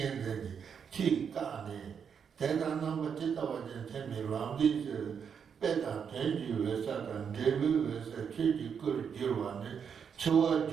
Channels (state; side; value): quieter; left; 7.1 dB